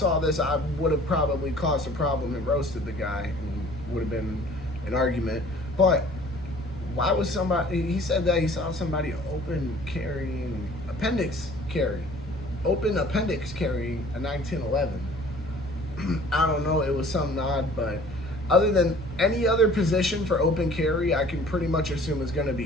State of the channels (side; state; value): both; normal; correlation 0.51